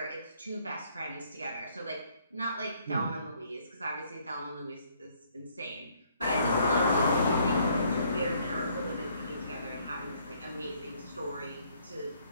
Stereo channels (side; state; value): both; inverted; correlation -0.66